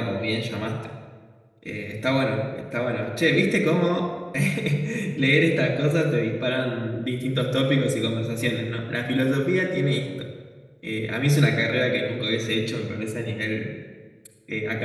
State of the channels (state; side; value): identical; both; correlation 1.00